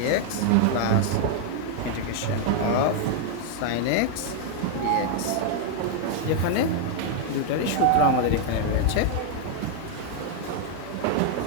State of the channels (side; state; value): both; different; correlation 0.00